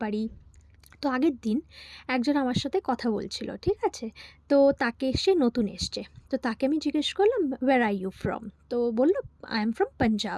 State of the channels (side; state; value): both; identical; correlation 1.00